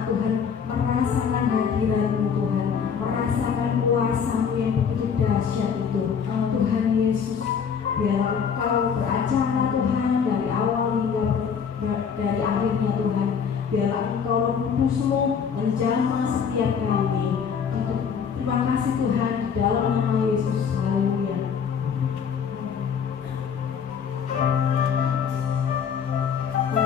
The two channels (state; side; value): quieter; right; 6.9 dB